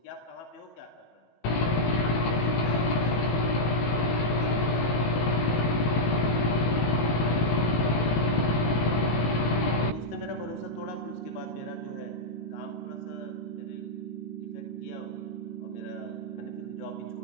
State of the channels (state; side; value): late; right; 18 ms